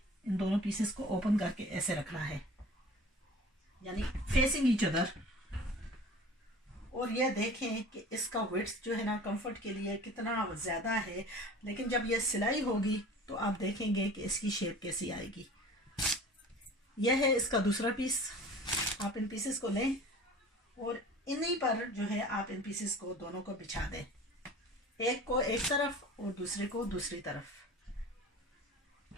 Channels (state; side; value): normal; both; correlation 0.43